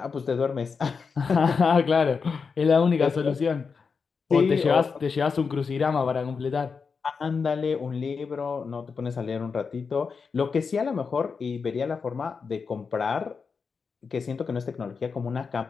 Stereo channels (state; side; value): quieter; right; 5.3 dB